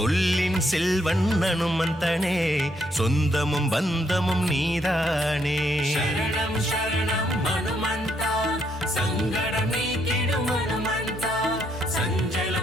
செல்வன் அனுமந்தனே சொந்தமும் பந்தமும் நீதானே சரணம் சரணம் ஹனுமந்தா சங்கடம் நீக்கிடும் ஹனுமந்தா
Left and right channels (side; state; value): both; normal; correlation 0.73